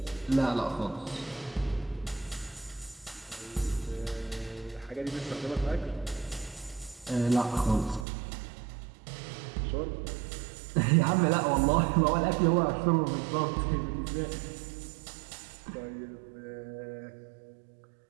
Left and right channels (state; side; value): drops out; left; at 8.1 s